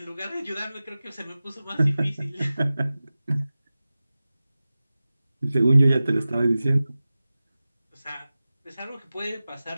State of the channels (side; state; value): both; inverted; correlation -0.96